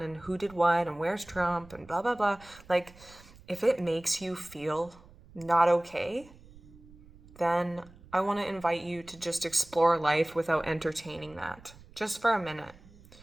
and who did what and where's Trump and blah, blah, blah, like if it makes you feel not okay, then I want to invite you to just explore life without entertaining that just for a minute.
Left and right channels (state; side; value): noise; right; rumble, 23 dB below the sound